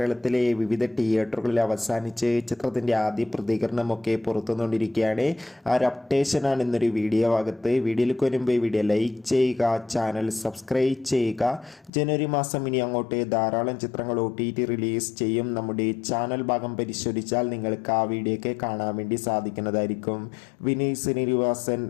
വിവിധ തിയേറ്ററുകളിൽ അവസാനിച്ച് ചിത്രത്തിൻ്റെ ആദ്യ പ്രതികരണമൊക്കെ പുറത്തുകൊണ്ടിരിക്കുകയാണ്. ആ ഒരു അപ്ഡേഷനാണ് ഇന്നൊരു വീഡിയോ ഭാഗത്ത്. വീഡിയോയിലേക്ക് വരുമ്പോൾ ഈ വീഡിയോ ലൈക്ക് ചെയ്യുക, ചാനൽ സബ്സ്ക്രൈബ് ചെയ്യുക. ജനുവരി മാസം ഇനി അങ്ങോട്ട് ധാരാളം ചിത്രങ്ങൾ OTT റിലീസ് ചെയ്യും. നമ്മുടെ ചാനൽ ഭാഗം പരിശോധിച്ചാൽ നിങ്ങൾക്ക് ആ വീഡിയോയൊക്കെ കാണാൻ വേണ്ടി സാധിക്കുന്നതായിരിക്കും. വിനീത് ശ്രീനിവാസൻ,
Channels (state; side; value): drops out; right; at 11.9 s